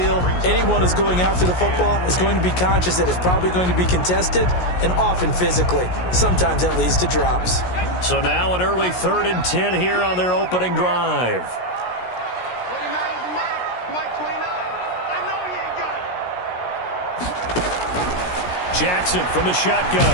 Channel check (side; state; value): right; late; 17 ms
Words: anyone who's going after the football is going to be conscious that it's probably going to be contested and often physically. Sometimes that leads to drops. So now an early 3rd and 10 here on their opening drive. Jackson from the